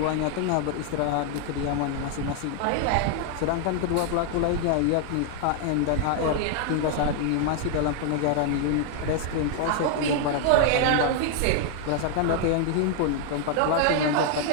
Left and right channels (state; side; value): different; both; correlation 0.00